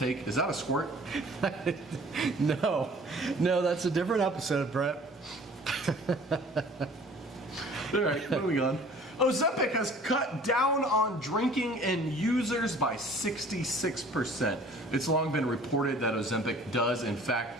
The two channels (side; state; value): both; normal; correlation 0.50